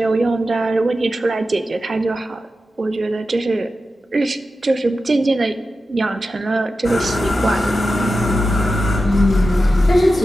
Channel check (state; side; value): normal; both; correlation 0.92